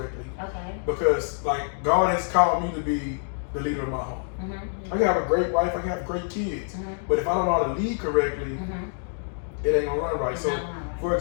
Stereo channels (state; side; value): silent; right; 61 dB below the other